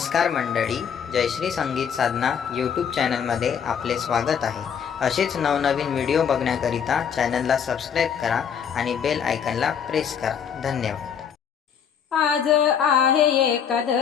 मंडळी, जयश्री संगीत साधना यूट्यूब चॅनलमध्ये आपले स्वागत आहे। असेच नवनवीन व्हिडिओ बघण्याकरिता चॅनलला सबस्क्राईब करा आणि बेल आयकॉनला प्रेस करा। धन्यवाद। आज आहे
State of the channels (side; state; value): right; quieter; 7.6 dB